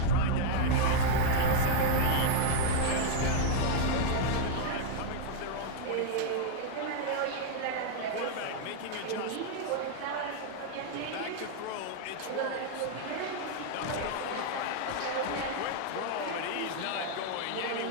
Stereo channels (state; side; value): different; both; correlation 0.00